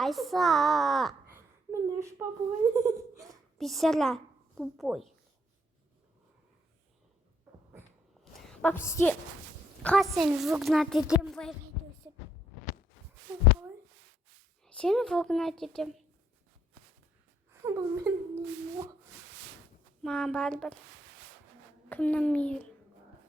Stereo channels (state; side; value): normal; both; correlation 0.71